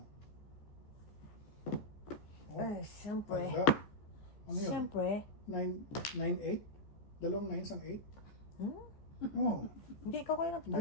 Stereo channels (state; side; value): late; right; 14 ms